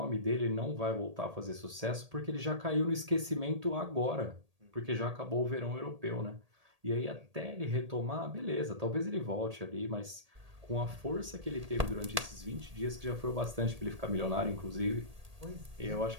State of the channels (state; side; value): late; left; 1.8 ms